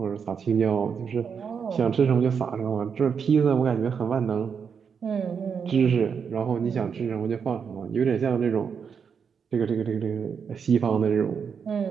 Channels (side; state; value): left; quieter; 6.6 dB